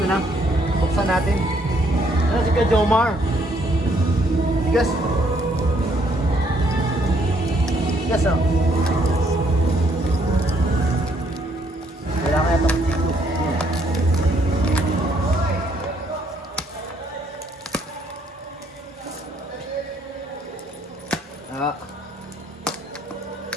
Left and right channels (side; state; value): both; normal; correlation 0.69